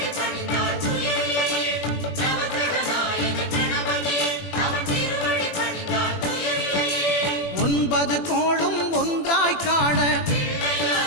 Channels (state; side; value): late; right; 21 ms